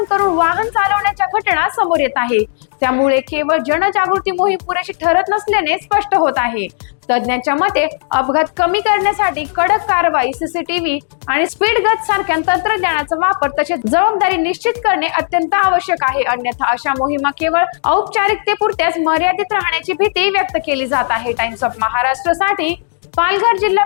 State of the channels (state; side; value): silent; right; digital silence